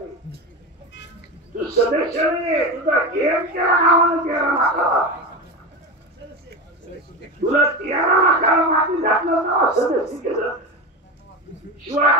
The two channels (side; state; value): both; normal; correlation 0.22